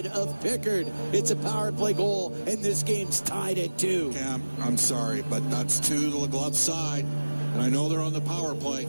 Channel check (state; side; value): inverted; both; correlation -1.00